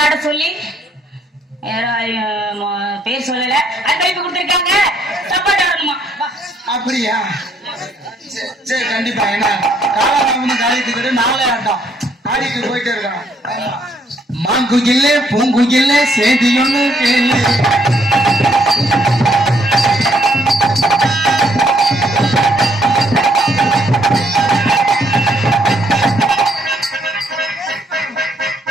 ஆட சொல்லி பேர் சொல்லல அது கைப்பு கொடுத்துருக்காங்க. தப்பாட்ட ஆடணுமா. அப்படியா சரி கண்டிப்பா. ஏன்னா காலாராமனு காலித்துக்கிட்டு நாளே ஆட்டம் ஆடிட்டு போயிட்டே இருக்கான். மாங்குயில்ல பூங்குயில்ல சேதி ஒண்ணு கேளு.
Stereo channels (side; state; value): both; normal; correlation 0.69